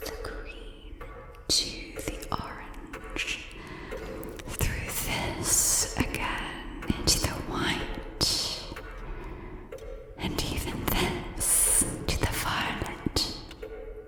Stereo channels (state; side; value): identical; both; correlation 1.00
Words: the green to the orange, through this again into the white, and even this to the violet,